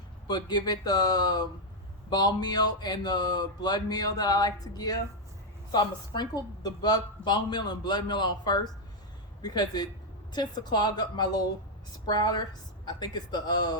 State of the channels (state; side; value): normal; both; correlation 0.01